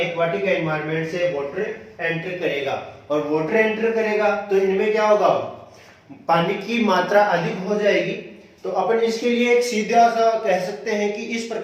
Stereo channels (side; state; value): both; identical; correlation 1.00